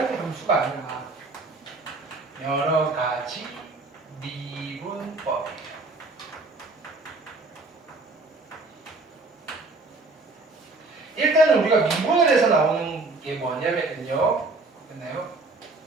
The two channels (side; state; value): left; quieter; 3.4 dB